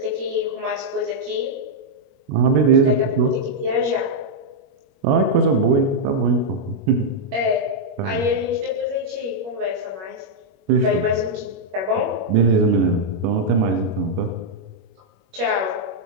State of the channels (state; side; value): late; left; 21 ms